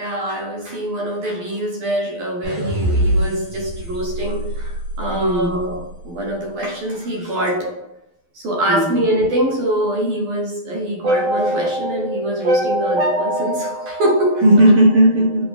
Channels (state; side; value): late; left; 12 ms